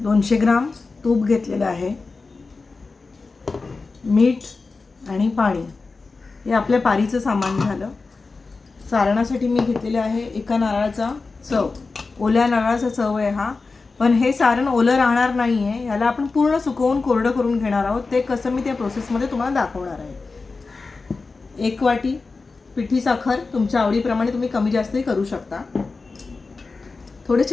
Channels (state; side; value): quieter; right; 4.0 dB